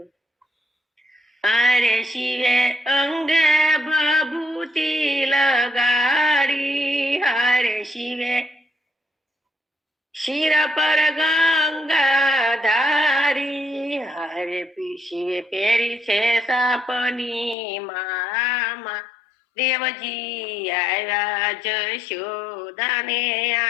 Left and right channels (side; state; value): right; drops out; at 17.6 s